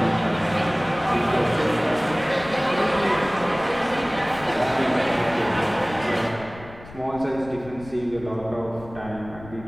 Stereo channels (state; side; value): noise; left; rumble, 17 dB below the sound